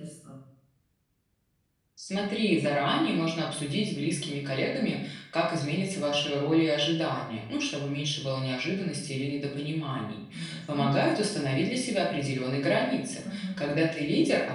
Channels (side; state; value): both; identical; correlation 1.00